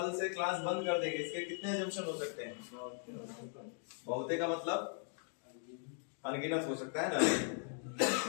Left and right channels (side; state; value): right; silent; 52 dB below the other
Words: से क्लास बंद कर देंगे, इसके कितने एजम्पशन हो सकते हैं? बहुते का मतलब अनगिनत हो सकता है ना,